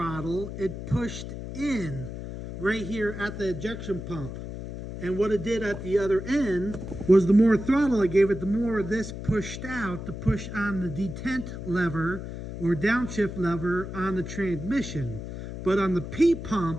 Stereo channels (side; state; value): left; noise; hum, 8 dB below the sound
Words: it pushed in right here at the ejection pump. And what it did at the other end was the more throttle I gave it, the more this pushed out to push on the detent lever or downshift lever on the transmission. But on the P